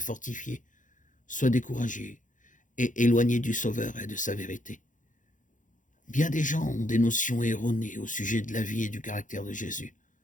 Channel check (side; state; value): right; late; 0.37 ms